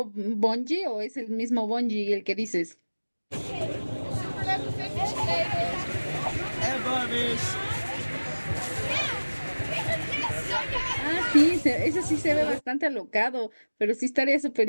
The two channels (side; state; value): both; inverted; correlation -1.00